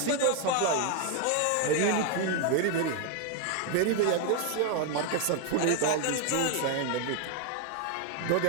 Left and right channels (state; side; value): different; both; correlation 0.01